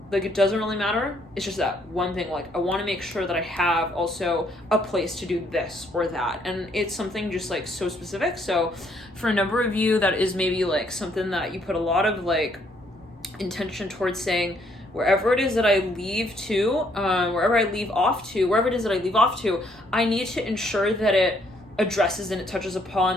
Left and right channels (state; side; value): normal; both; correlation 0.68